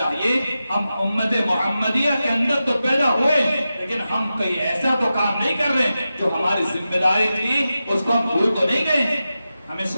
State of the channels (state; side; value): inverted; both; correlation -0.92